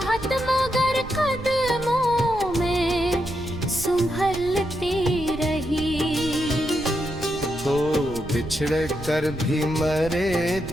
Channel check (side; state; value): right; noise; rumble, 13 dB below the sound